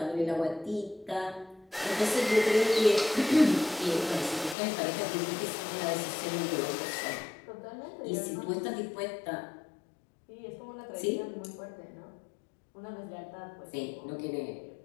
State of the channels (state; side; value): drops out; right; at 4.5 s